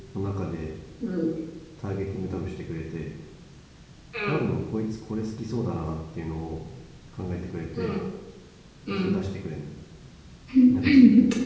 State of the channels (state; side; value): identical; both; correlation 1.00